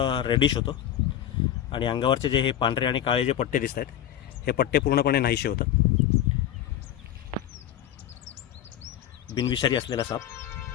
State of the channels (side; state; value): right; quieter; 11.1 dB